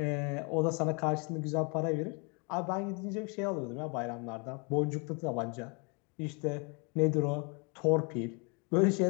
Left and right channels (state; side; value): quieter; right; 33.1 dB